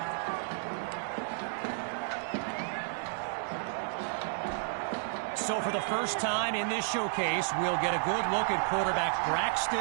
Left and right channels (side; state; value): left; silent; digital silence